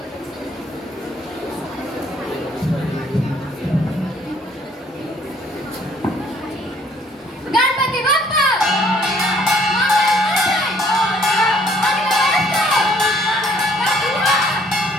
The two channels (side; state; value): both; normal; correlation 0.61